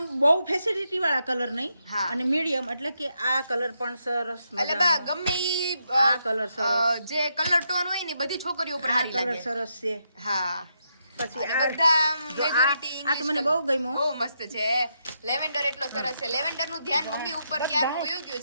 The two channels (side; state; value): both; inverted; correlation -0.81